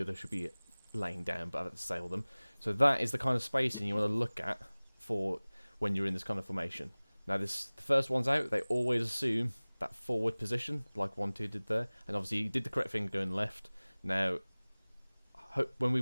they should be laying down, but I've had to disable them. So that is the kind of spacing you want to look at for when you're in this kind of formation. Now the first one's out, they always assume that forward position, like 1-2 did there, and obviously you did the correct thing going left. Now, when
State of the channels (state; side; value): inverted; both; correlation -1.00